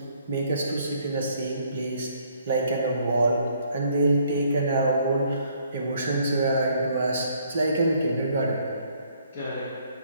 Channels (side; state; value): both; inverted; correlation -0.65